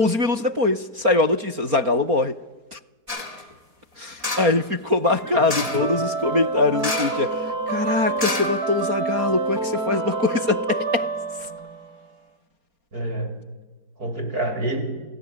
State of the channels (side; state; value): left; late; 4.1 ms